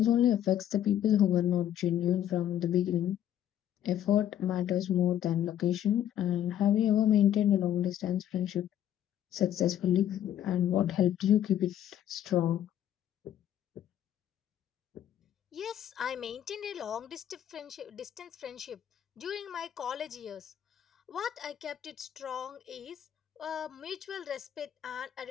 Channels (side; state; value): right; quieter; 10.8 dB